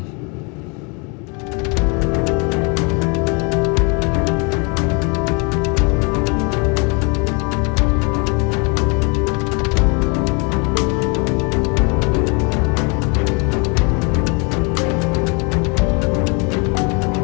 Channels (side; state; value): right; quieter; 32.2 dB